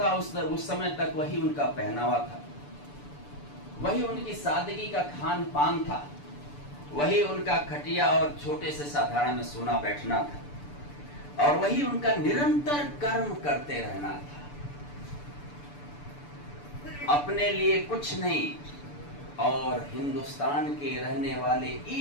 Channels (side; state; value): right; late; 6.9 ms